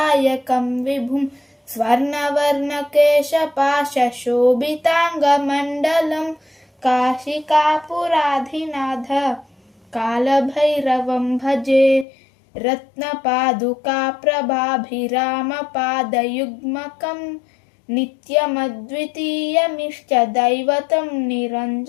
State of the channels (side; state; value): right; drops out; at 12.1 s